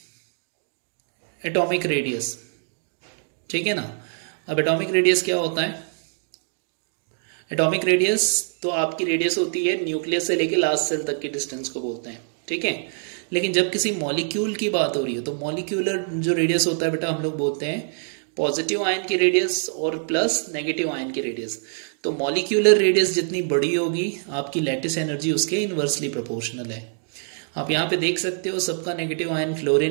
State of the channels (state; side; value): silent; left; digital silence